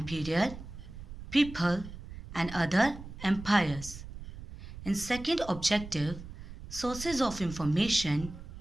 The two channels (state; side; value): noise; right; rumble, 12 dB below the sound